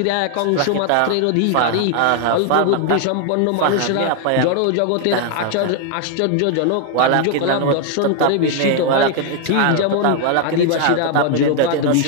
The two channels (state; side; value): different; both; correlation 0.00